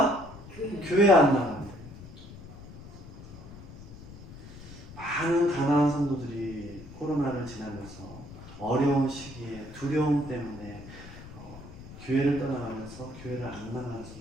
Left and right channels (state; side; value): noise; left; rumble, 15 dB below the sound